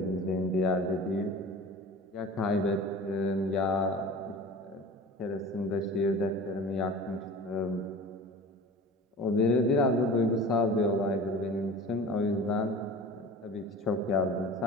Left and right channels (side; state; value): both; normal; correlation 0.38